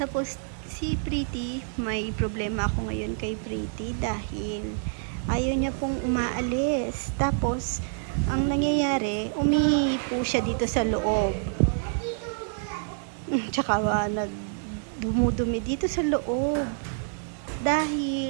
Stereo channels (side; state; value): left; silent; digital silence